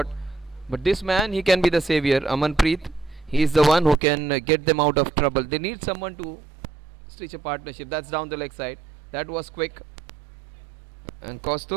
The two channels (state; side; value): drops out; left; at 4.0 s